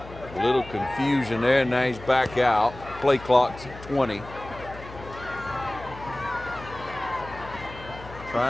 A little confusion there, now he's back out. Play clock's at 20.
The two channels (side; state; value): left; noise; hum, 16 dB below the sound